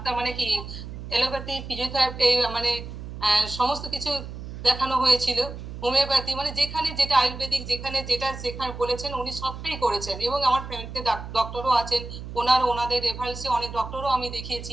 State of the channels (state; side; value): noise; right; hum, 10 dB below the sound